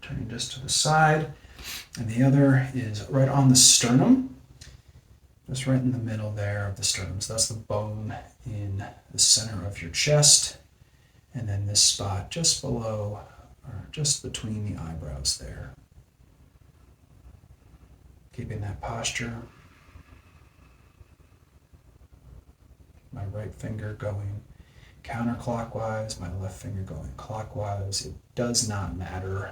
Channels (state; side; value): identical; both; correlation 1.00